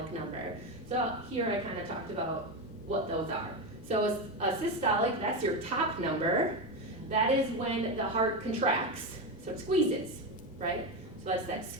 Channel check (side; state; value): both; normal; correlation 0.14